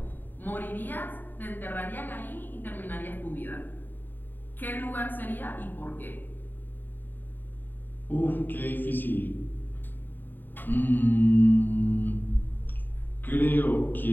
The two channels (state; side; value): late; right; 0.091 ms